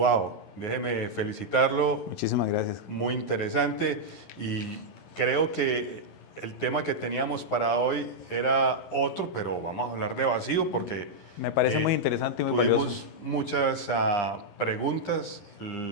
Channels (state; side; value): late; right; 11 ms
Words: déjeme felicitarlo, Muchísimas gracias. muy interesante y creo que el tema que teníamos para hoy era otro, pero vamos a hablar de vacío porque Me parece muy interesante y muy valioso. tuvimos muchas preguntas,